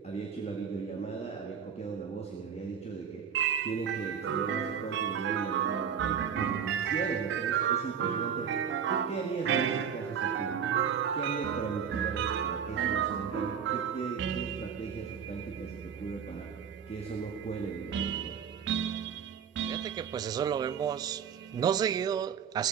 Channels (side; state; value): left; quieter; 7.5 dB